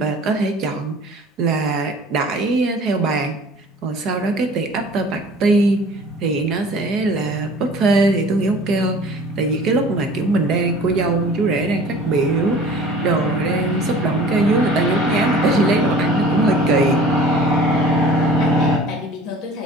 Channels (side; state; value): both; normal; correlation 0.46